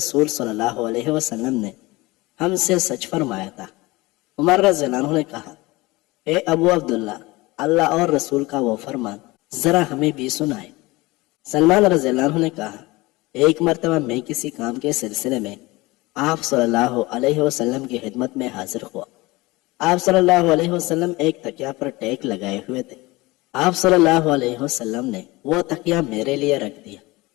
صلی اللہ علیہ وسلم نے ہم سے سچ فرمایا تھا۔ عمر رضی اللہ عنہ نے کہا، اے ابو عبداللہ، اللہ اور رسول کا وہ فرمان ذرا ہمیں بھی سنائے۔ سلمان رضی اللہ عنہ نے کہا، ایک مرتبہ میں کسی کام کے سلسلے میں آپ صلی اللہ علیہ وسلم کی خدمت میں حاضر ہوا۔ آپ صلی اللہ علیہ وسلم ایک تکیا پر ٹیک لگائے ہوئے تھے۔ آپ صلی اللہ علیہ وسلم نے وہ تکیا میرے لیے رکھ دیا۔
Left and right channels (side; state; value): right; quieter; 21.7 dB